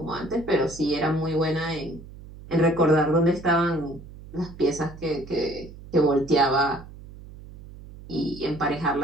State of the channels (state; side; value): noise; right; hum, 17 dB below the sound